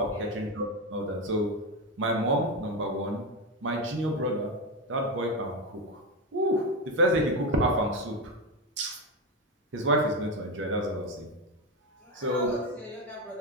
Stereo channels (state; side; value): normal; both; correlation 0.13